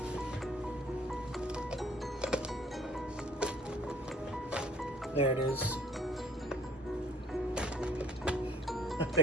There it is. I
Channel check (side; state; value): both; normal; correlation 0.59